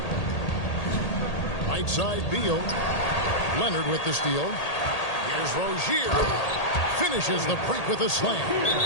Right side, Beal. Leonard with the steal. Here's Rozier. Finishes the break with a slam.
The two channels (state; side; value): late; right; 1.8 ms